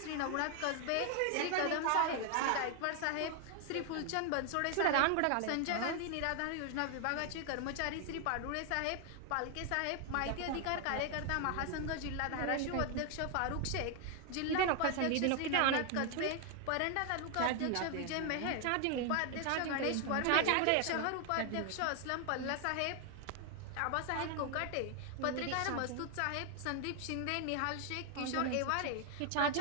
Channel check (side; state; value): both; different; correlation 0.00